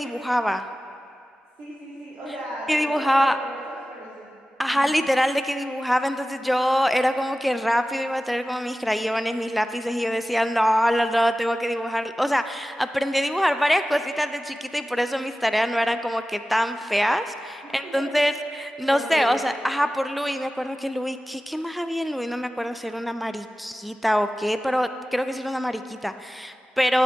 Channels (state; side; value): normal; both; correlation 0.95